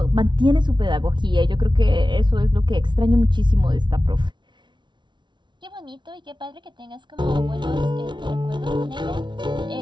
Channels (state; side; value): late; left; 0.23 ms